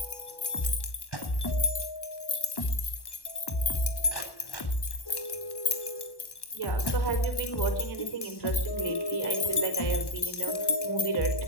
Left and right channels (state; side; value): late; right; 1.1 ms